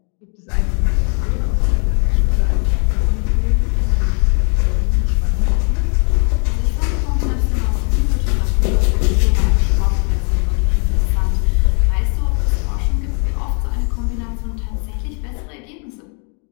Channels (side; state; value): right; quieter; 39.7 dB